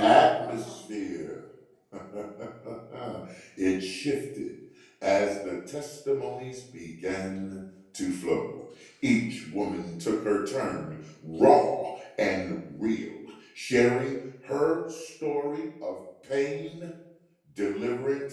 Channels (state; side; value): identical; both; correlation 1.00